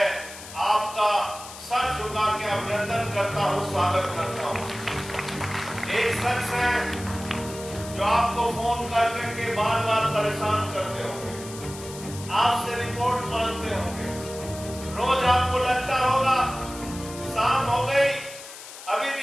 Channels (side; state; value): left; noise; hiss, 14 dB below the sound